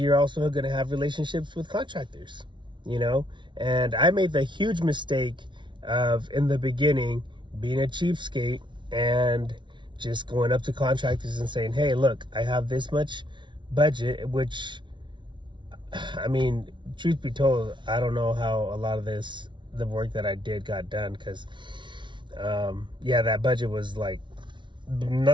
also going to have relationships with contractors, and I made the huge mistake of, in the beginning, being a cheapskate and just going up to contractors and saying, hey, look, I have this much budget, which, I mean, truth be told, I don't know how a lot of the work that I did got done, because that budget was like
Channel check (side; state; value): left; late; 0.24 ms